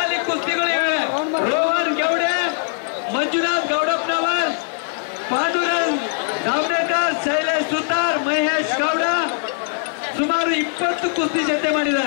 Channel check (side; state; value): right; silent; digital silence